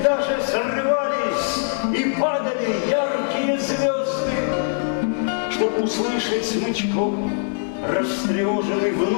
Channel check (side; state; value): right; silent; digital silence